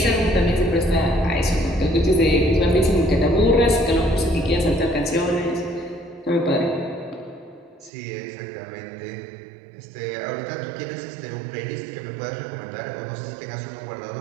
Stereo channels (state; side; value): drops out; left; at 7.9 s